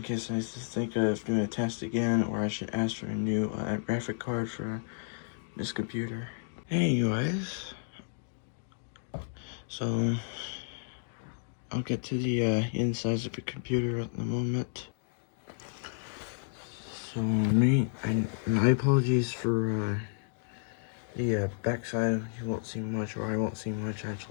case I think of doing a test again, or I should ask for a new graphic card for this computer. Anyways, so I'll get to the insides of the computer at the moment. So my apologies for the backside. You won't see much, or I won't see much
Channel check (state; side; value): silent; right; digital silence